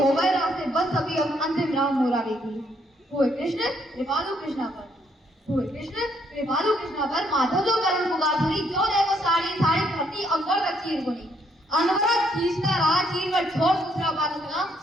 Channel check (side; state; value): both; normal; correlation 0.70